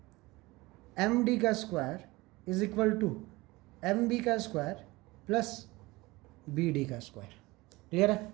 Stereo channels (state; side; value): quieter; left; 21.4 dB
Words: M D का square is equal to M B का स्क्वायर प्लस बी डी का स्क्वायर। क्लियर है?